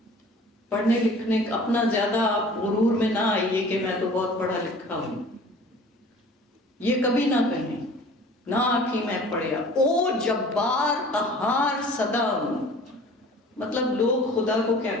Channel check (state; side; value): normal; both; correlation 0.46